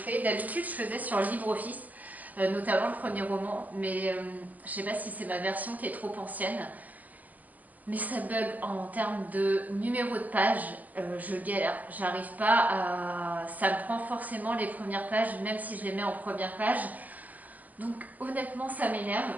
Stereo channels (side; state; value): left; late; 0.080 ms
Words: D'habitude, je faisais sur LibreOffice, notamment le premier roman, mais je ne sais pas si c'est ma version qui est trop ancienne. Mais ça bug en termes de numéro de page, je galère, j'arrive pas à... Ça me prend forcément les premières pages, même si je les mets en première page. Donc honnêtement ça m'énerve,